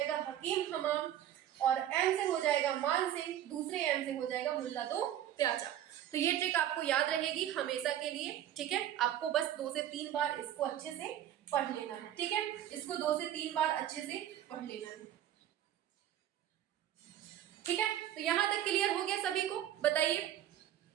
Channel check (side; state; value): left; quieter; 11.6 dB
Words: हकीम हमाम, और एम से हो जाएगा मान सिंह, दूसरे एम से हो जाएगा मुल्ला दो प्याजा। तो ये ट्रिक आपको याद रहेगी हमेशा के लिए। ठीक है, आपको बस 2 से 3 बार इसको अच्छे से पढ़ लेना है। ठीक है, इसको 2 से 3 बार अच्छे से पढ़ लेना है। ठीक है, तो यहां तक क्लियर हो गया सभी को? बताइए।